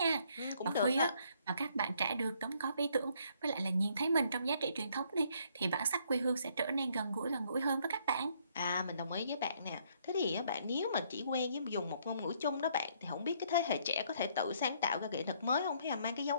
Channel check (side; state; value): both; inverted; correlation -0.67